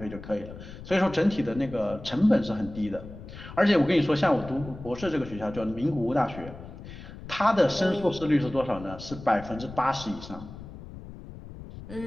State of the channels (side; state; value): left; noise; rumble, 14 dB below the sound